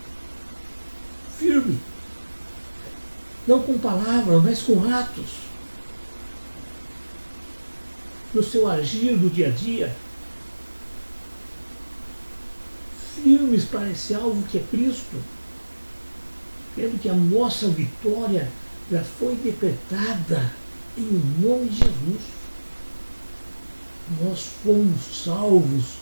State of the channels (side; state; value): both; inverted; correlation -1.00